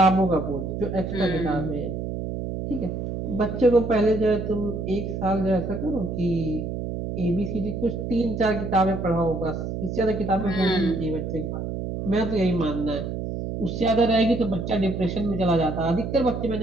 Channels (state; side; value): noise; right; hum, 5 dB below the sound